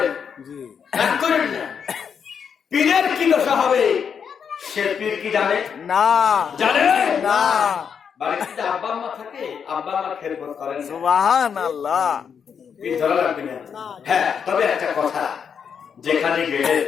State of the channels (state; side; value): quieter; right; 7.0 dB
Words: জি। রাগ করেন না। পীরের কি দশা হবে? সে পীর কি জানে? না। জানে না। বাড়িতে আব্বা আম্মা থাকে, আব্বা আম্মা খেদমত করেন, সুবহানাল্লাহ। পীর ধরা লাগবে না। হ্যাঁ, তবে একটা কথা, যেখানে গেলে,